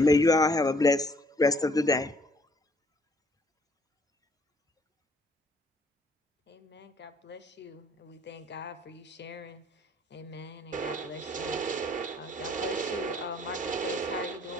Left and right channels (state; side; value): normal; both; correlation 0.62